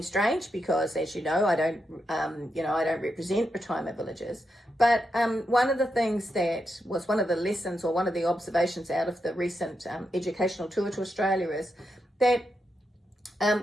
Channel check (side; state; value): both; normal; correlation 0.85